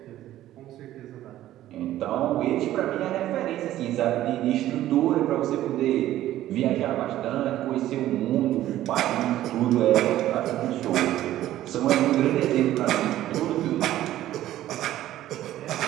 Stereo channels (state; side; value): quieter; left; 13.7 dB